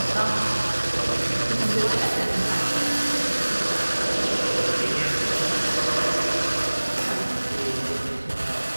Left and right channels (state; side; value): inverted; both; correlation -1.00